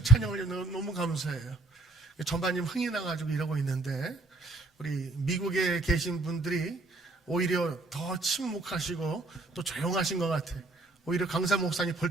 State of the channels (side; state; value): left; quieter; 3.1 dB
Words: 찬양을 너무 감사해요. 전반님 흥이 나가지고 이러고 있는데 우리 미국에 계신 분들이 오히려 더 침묵하시고 또 조용하신 것 같아요. 오히려 강사 목사님